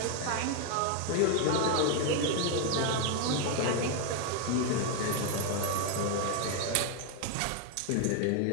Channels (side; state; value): both; different; correlation 0.01